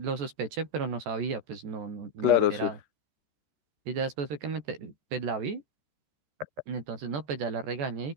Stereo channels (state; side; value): late; left; 14 ms